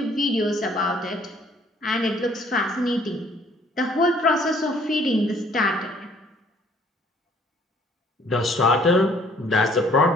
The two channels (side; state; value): both; normal; correlation 0.59